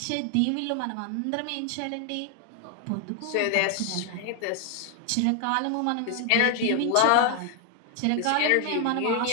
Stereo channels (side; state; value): both; different; correlation 0.00